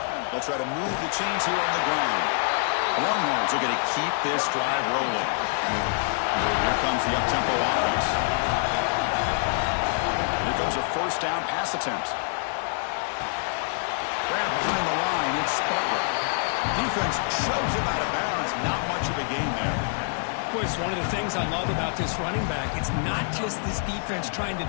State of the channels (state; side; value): silent; right; 61 dB below the other